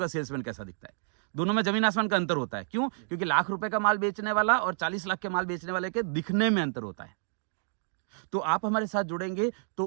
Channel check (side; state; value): left; silent; digital silence